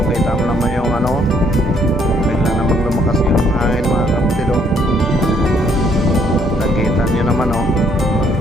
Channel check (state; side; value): normal; both; correlation 0.67